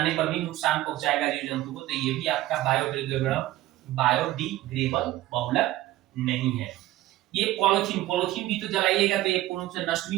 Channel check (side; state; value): left; quieter; 15.7 dB